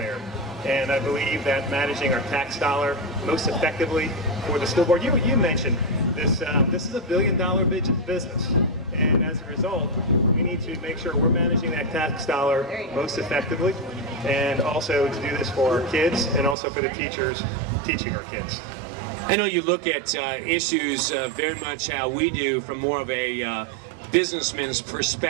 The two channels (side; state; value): left; drops out; at 16.6 s